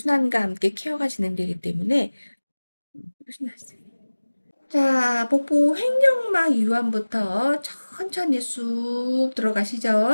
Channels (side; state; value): both; inverted; correlation -1.00